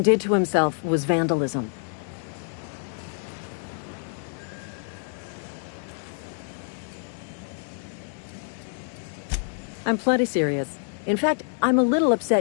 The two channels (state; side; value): silent; right; digital silence